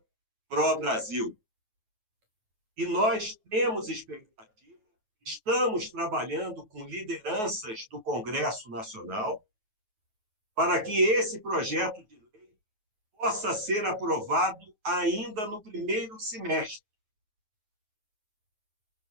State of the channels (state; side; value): late; left; 9.3 ms